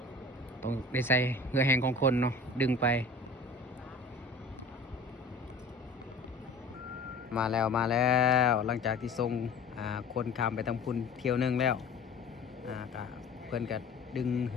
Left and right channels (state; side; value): quieter; right; 3.2 dB